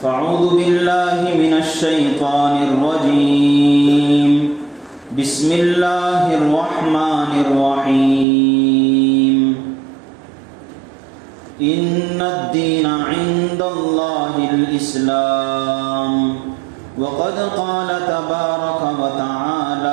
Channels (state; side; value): drops out; left; at 8.2 s